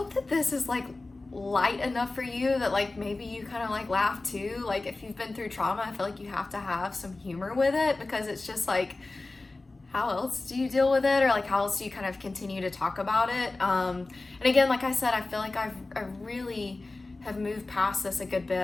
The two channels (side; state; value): right; quieter; 3.2 dB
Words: that this is like light enough for you that like maybe you kind of like laugh too. Like if you've been through trauma, I feel like you have to have some humor with it, because it's just like, how else do you deal with it, or like how else do you kind of continue to talk about it? And again, like I said, I feel like I really have moved past this a good